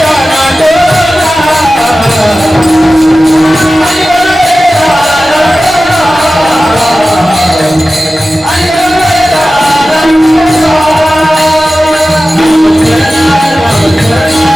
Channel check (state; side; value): normal; both; correlation 0.95